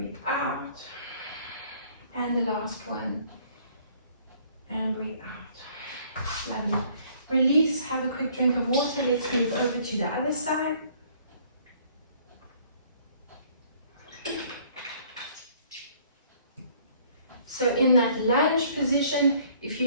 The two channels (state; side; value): inverted; both; correlation -0.59